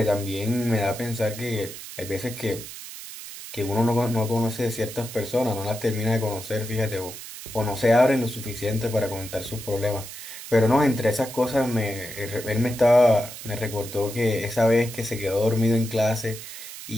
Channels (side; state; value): right; noise; hiss, 12 dB below the sound